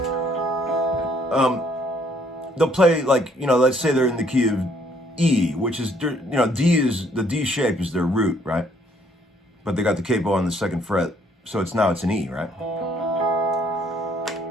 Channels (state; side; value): normal; both; correlation 0.65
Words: They'll play like, you know, let's say they're in the key of E, which is, you know, the D shape is their root, right? But they got the capo on the 2nd fret, so it's an E, right?